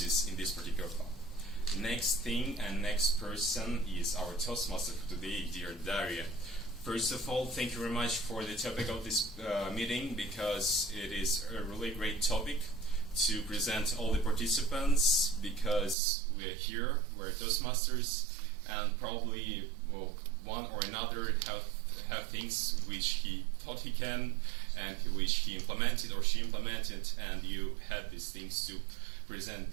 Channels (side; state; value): left; drops out; at 16.0 s